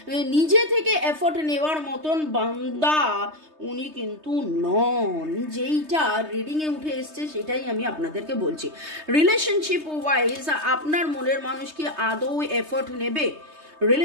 নিজে থেকে এফোর্ট নেওয়ার মতন বান্দা উনি কিন্তু নন। যেইটা রিডিংয়ে উঠে এসছে সেটাই আমি আপনাদেরকে বলছি। রিলেশনশিপ ওয়াইজ আপনার মনের মানুষ কি আদৌ এফোর্ট নেবে?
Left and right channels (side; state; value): left; late; 3.2 ms